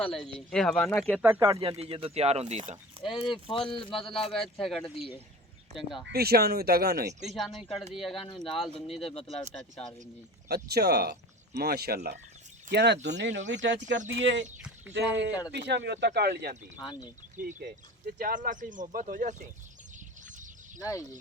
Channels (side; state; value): both; normal; correlation 0.36